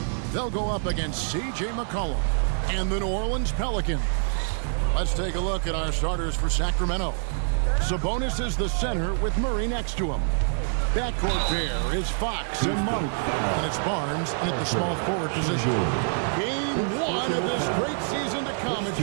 they'll go up against C.J. McCollum and the New Orleans Pelicans. Let's take a look at our starters for Sacramento. Sabonis is the center with Murray next to him. Backcourt pair is Fox and Monk, and it's Barnes in at the small forward position. Game 1 of this great season to come. It's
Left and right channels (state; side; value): silent; left; digital silence